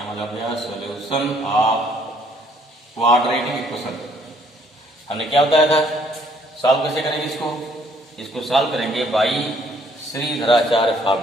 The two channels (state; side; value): normal; both; correlation 0.64